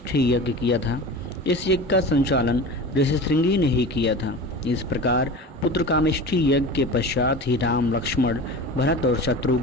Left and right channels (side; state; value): both; normal; correlation 0.33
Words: यज्ञ किया था। इस यज्ञ का संचालन ऋषि श्रृंगी ने ही किया था। इस प्रकार पुत्र कामेष्ठी यज्ञ के पश्चात ही राम, लक्ष्मण, भरत और